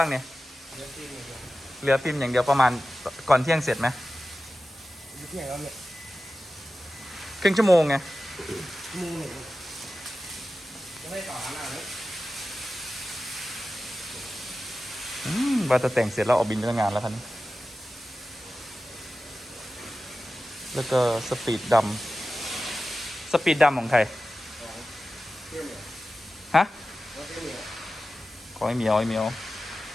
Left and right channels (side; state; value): both; normal; correlation 0.94